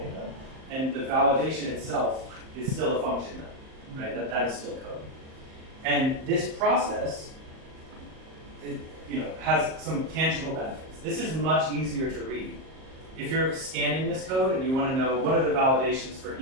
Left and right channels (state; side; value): late; left; 38 ms